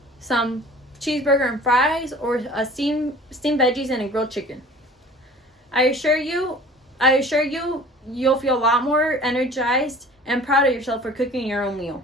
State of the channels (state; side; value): normal; both; correlation 0.46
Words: Some cheeseburger and fries, or a steamed veggies and a grilled chicken? I assure you, you'll feel a lot more energized and proud of yourself for cooking your own